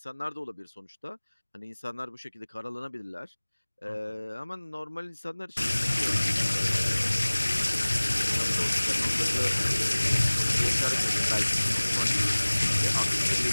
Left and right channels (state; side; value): inverted; both; correlation -1.00